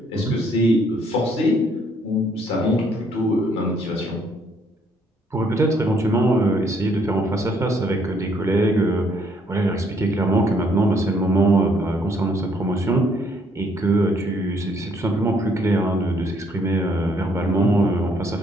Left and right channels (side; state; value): both; normal; correlation 0.67